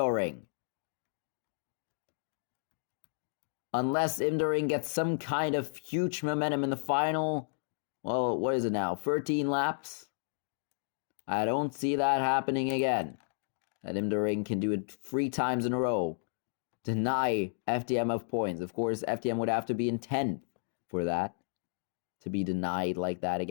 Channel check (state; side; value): silent; right; digital silence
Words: Unless Imdoring gets some kind of huge momentum in the final, well, what is it now? 13 laps? I don't see that happening again. That Imdoring can do it 3 times in a row. Deny FTM of points. Of course, FTM would have to be in 10th for that. To be denied like that